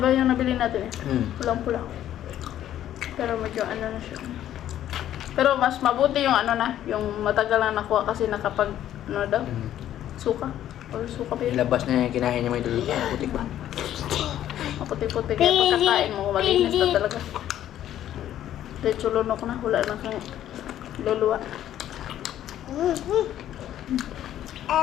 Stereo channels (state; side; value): quieter; right; 11.7 dB